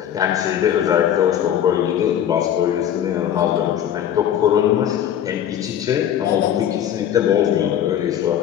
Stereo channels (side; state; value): right; quieter; 10.1 dB